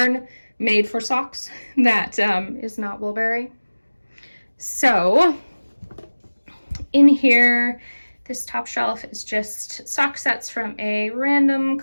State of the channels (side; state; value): both; inverted; correlation -1.00